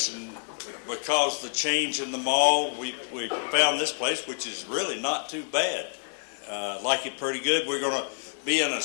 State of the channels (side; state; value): right; silent; digital silence